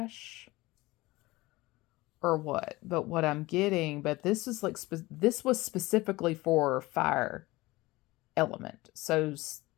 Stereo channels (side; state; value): right; quieter; 20.3 dB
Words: or what. But what I'm getting, but this is like, this was specifically for fire element. So